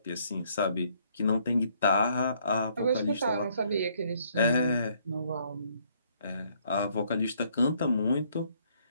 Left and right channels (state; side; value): inverted; both; correlation -0.67